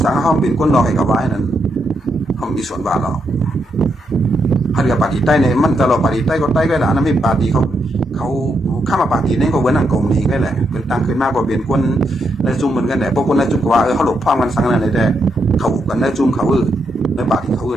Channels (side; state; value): both; normal; correlation 0.80